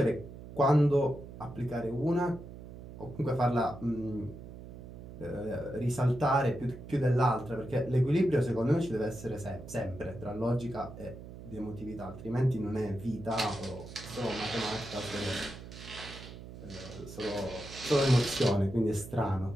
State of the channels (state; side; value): noise; right; hum, 14 dB below the sound